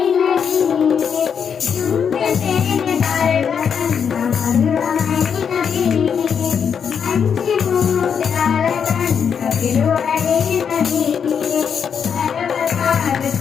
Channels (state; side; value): quieter; right; 7.2 dB